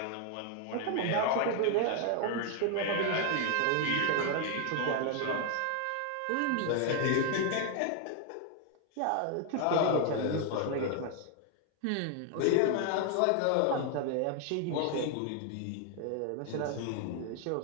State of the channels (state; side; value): different; both; correlation 0.00